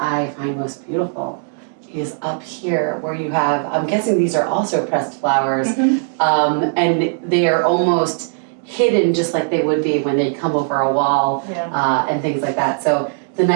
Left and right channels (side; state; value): left; silent; digital silence